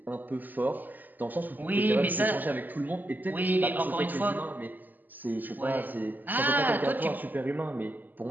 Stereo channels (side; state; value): left; late; 0.086 ms